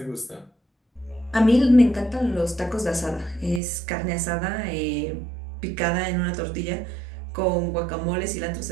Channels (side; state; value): left; drops out; at 3.6 s